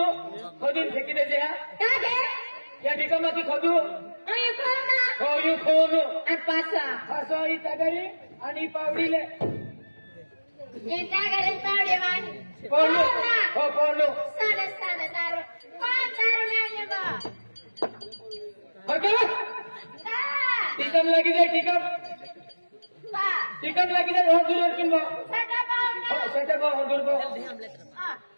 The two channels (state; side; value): inverted; both; correlation -1.00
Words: फेकी देते या ठिकाणी खोदू हो यू खोनू पासा ही तगरी आणि पावडीले पोलो हो पोलो टिकम लगी जाए टिकम लगी जाए बहुत दूर किन सेटा बो दूर बो